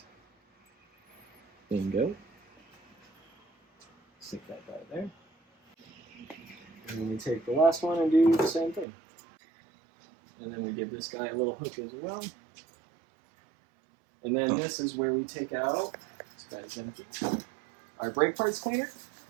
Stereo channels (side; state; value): left; drops out; at 8.8 s